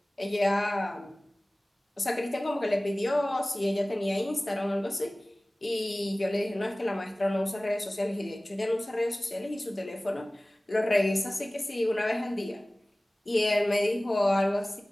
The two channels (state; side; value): normal; both; correlation 0.98